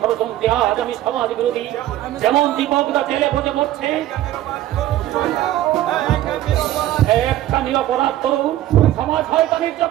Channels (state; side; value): quieter; left; 13.9 dB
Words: আজ আমি সমাজ বিরোধী। যেমন দীপকদা জেলে বসে মরছে, একটা নিরপরাধ তরুণ সমাজ শয়তানের